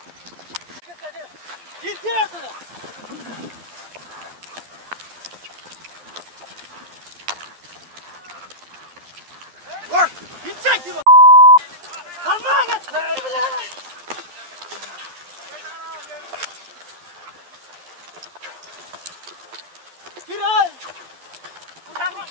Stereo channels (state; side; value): late; left; 11 ms